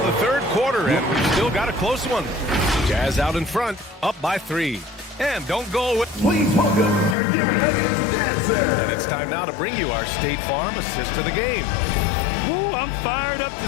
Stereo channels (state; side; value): drops out; right; at 7.2 s